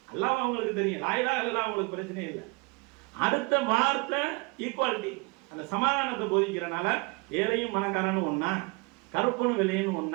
அல்லாஹ் அவங்களுக்கு தெரியும், லா இலாஹ இல்லல்லாஹ் அவங்களுக்கு பிரச்சனையே இல்லை. அடுத்த வார்த்தை ஈக்குவாலிட்டி, அந்த சமாதானத்தை போதிக்கிறனால ஏழையும் பணக்காரனும் ஒன்னா, கருப்பனும் விலையும்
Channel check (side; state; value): left; quieter; 28.9 dB